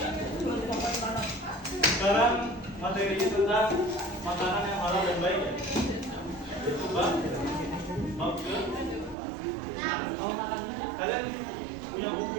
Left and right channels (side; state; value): left; drops out; at 9.2 s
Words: Sekarang materinya tentang makanan yang halal dan baik ya. Itu bab ke. Kalian punya buku